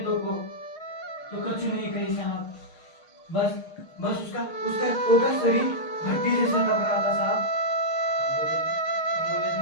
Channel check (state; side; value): late; right; 6.5 ms